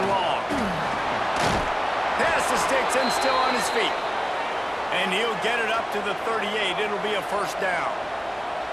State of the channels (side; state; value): both; identical; correlation 1.00